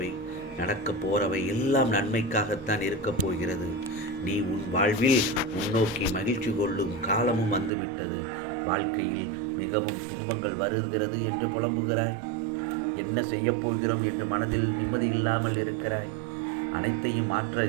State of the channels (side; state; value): left; drops out; at 7.7 s